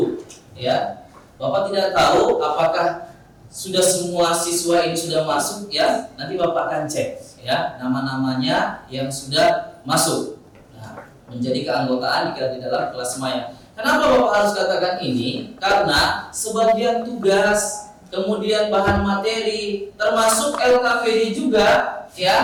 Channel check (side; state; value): both; identical; correlation 1.00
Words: Ya, Bapak tidak tahu apakah sudah semua siswa ini sudah masuk ya. Nanti Bapak akan cek ya nama-namanya yang sudah masuk. Nah, menjadi keanggotaan di dalam kelas maya. Kenapa Bapak harus katakan ini? Karena sebagian tugas, kemudian bahan materi, termasuk LKPD juga,